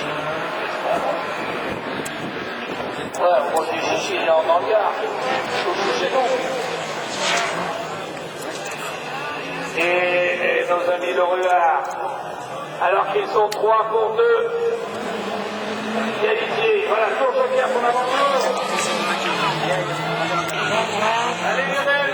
Ouais, moi, les chichis, il est en hangar. C'est bon. Et nos amis le Ruard, Alors qu'ils sont 3 pour 2. Qualifiés. Voilà, tour joker pour l'aventure. Allez Lionel,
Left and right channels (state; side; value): identical; both; correlation 1.00